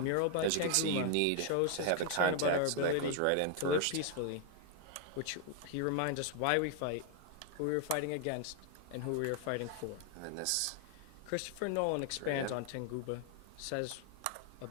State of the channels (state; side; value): different; both; correlation 0.00